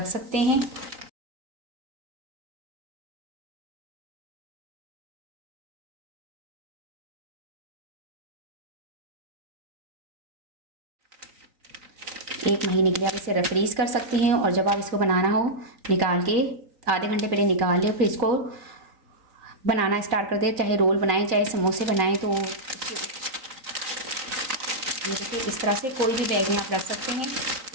सकते हैं। एक महीने के लिए आप इसे फ्रीज कर सकती हैं। और जब आप इसको बनाना हो, निकाल के आधे घंटे पहले निकाल लें, फिर इसको बनाना स्टार्ट कर दें। चाहे रोल बनाएं, चाहे समोसे बनाएं। तो देखिए इस तरह से कोई भी बैग में आप रख सकते हैं।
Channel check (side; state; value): left; late; 3.9 ms